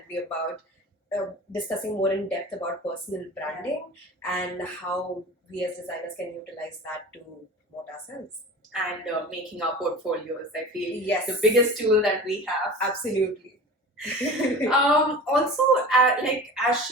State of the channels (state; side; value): normal; both; correlation 0.36